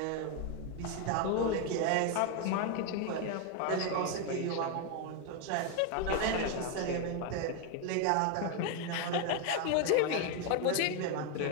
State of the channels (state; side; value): different; both; correlation 0.01